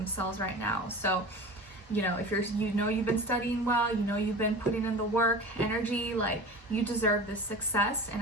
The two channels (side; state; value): both; normal; correlation 0.34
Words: right now. So, you know, if you've been studying well, you've been putting in the work, energy, like you deserve this success, and